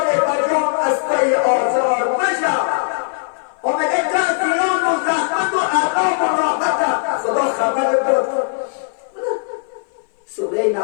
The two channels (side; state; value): right; silent; 59 dB below the other